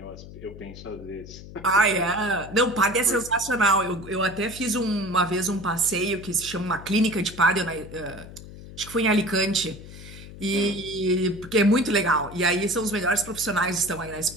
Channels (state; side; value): noise; left; hum, 15 dB below the sound